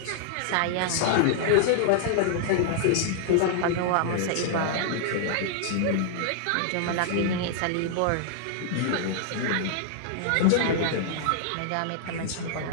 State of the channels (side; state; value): both; different; correlation -0.01